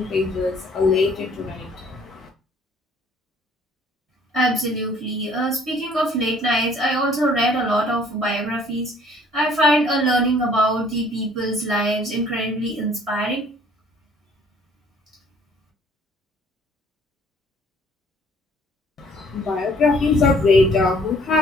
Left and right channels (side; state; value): both; normal; correlation 0.58